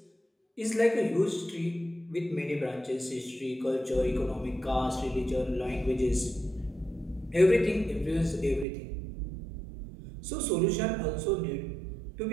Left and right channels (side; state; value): left; drops out; at 8.7 s